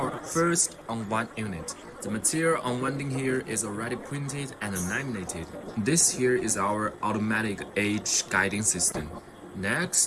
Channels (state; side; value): identical; both; correlation 1.00